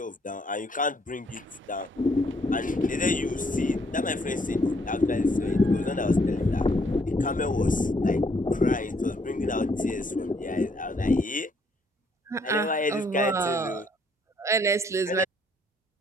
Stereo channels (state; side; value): normal; both; correlation 0.68